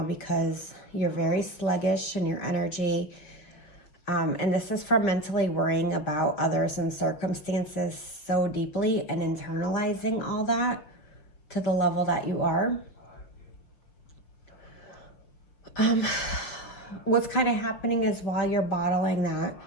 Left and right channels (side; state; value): right; late; 5.5 ms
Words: because you're very sluggish in your energy. And this is from mentally worrying about others and circumstances so deeply and internalizing all that to the level that you are. What's kind of happening is while you're bottling that,